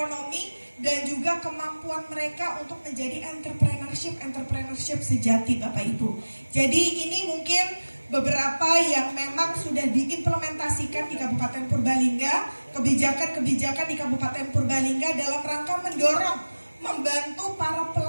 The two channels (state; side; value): inverted; both; correlation -1.00